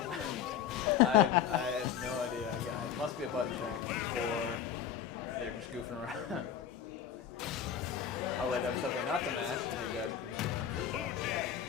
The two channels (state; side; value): quieter; right; 8.8 dB